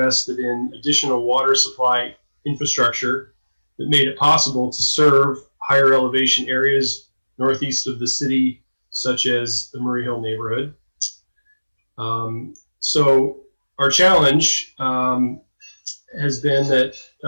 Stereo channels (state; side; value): inverted; both; correlation -1.00